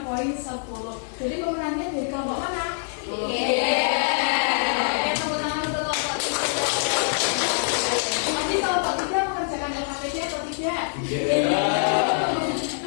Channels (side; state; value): right; silent; digital silence